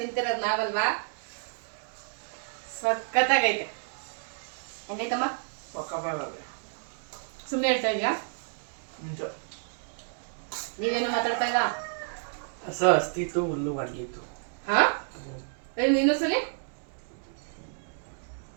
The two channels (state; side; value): silent; left; digital silence